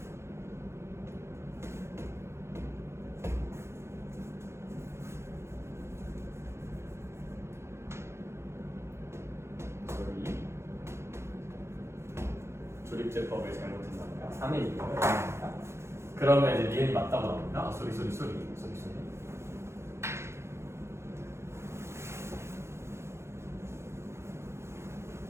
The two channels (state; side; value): late; left; 0.13 ms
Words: 조립제법을 잘못했나봐요. 3A니까. 그러면 이제 니은이 맞다고 나옵니다. 소리.